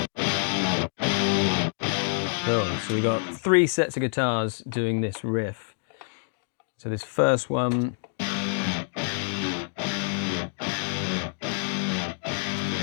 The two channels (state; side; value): silent; right; digital silence